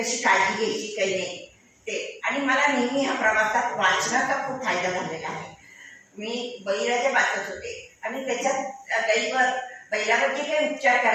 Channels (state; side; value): identical; both; correlation 1.00